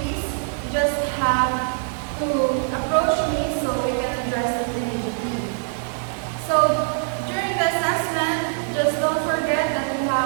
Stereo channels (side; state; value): left; silent; digital silence